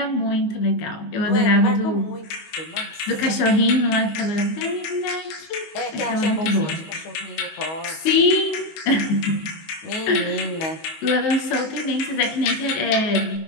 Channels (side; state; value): right; late; 19 ms